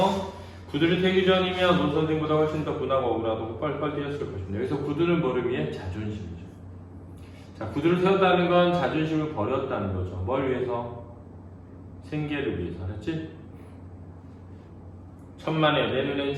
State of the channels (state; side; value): identical; both; correlation 1.00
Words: 구두를 태기 전이면 오 선생보다 훨씬 더 분하고 억울하고 뻘뻘 뛰었을 것입니다. 여기서 구두는 뭐를 위해? 자존심이죠. 자, 구두를 세웠다는 건 자존심을 버렸다는 거죠. 뭘 위해서? 생계를 위해서. 알았지? 천만에 내 눈엔